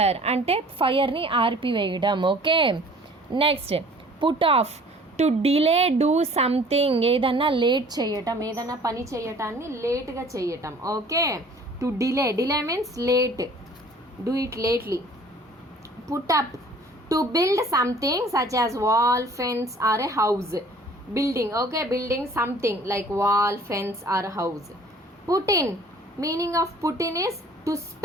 అంటే ఫైర్ని ఆర్పివేయడం. Okay, next put off. To delay do something, ఏదన్నా లేట్ చేయటం, ఏదన్నా పని చేయటాన్ని లేట్గా చేయటం. Okay, to delay means late, do it lately. Put up. To build something such as wall, fence or a house. Building. Okay, building something like wall, fence or house. Put in. Meaning of put in is to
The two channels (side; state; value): both; normal; correlation 0.51